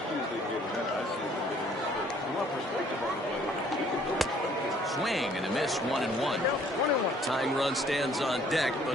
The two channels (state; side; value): normal; both; correlation 0.60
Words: Swing and a miss, 1-1. Tying run stands on deck,